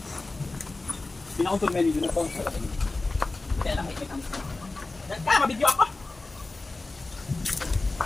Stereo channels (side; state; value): right; quieter; 3.3 dB